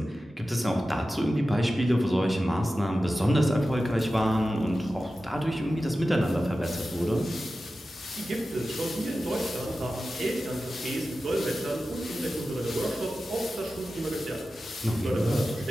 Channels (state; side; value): normal; both; correlation 0.94